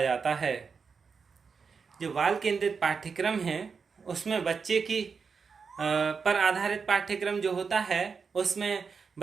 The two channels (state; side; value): quieter; left; 5.5 dB